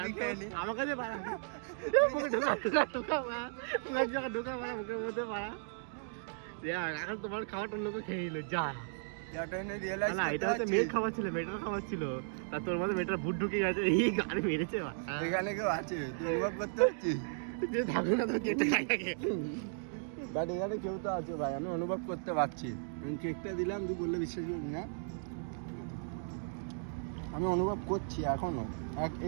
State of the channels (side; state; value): left; silent; digital silence